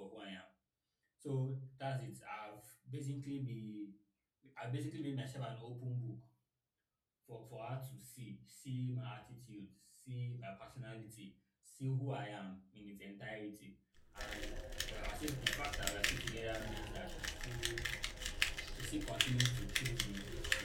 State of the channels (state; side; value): identical; both; correlation 1.00